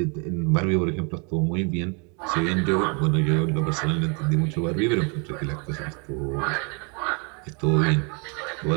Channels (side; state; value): left; quieter; 34.4 dB